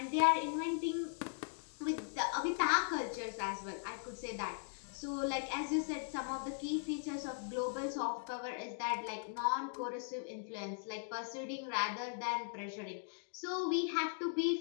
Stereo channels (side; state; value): right; silent; digital silence